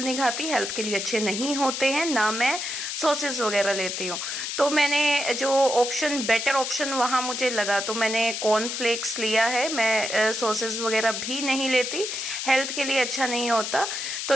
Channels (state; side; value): noise; left; hiss, 4 dB below the sound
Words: नहीं खाती, हेल्थ के लिए अच्छे नहीं होते हैं, ना मैं सॉसेस वगैरह लेती हूँ। तो मैंने जो ऑप्शन, बेटर ऑप्शन वहां मुझे लगा, तो मैंने कॉर्नफ्लेक्स लिया है। मैं सॉसेस वगैरह भी नहीं लेती, हेल्थ के लिए अच्छा नहीं होता। तो